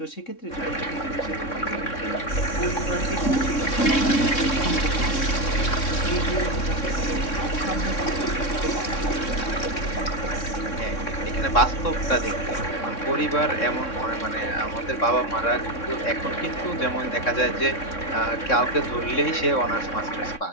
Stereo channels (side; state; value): right; late; 3.6 ms